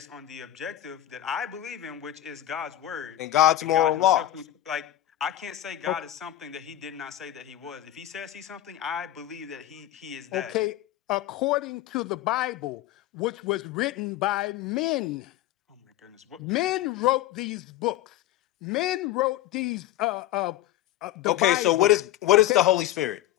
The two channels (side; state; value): right; quieter; 13.8 dB